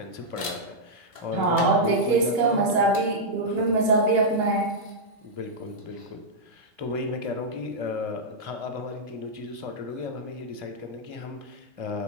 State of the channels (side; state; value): left; late; 2.7 ms